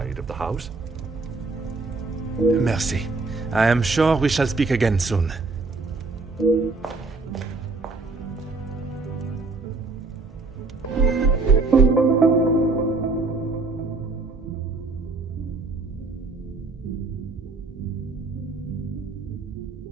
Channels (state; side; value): quieter; left; 3.7 dB